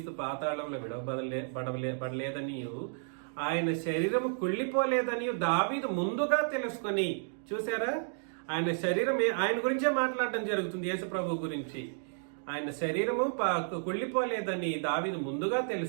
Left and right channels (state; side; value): silent; left; digital silence